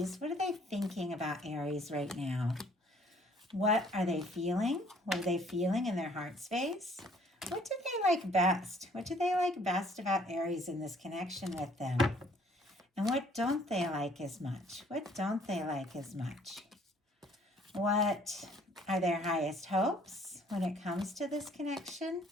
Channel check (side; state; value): both; normal; correlation 0.60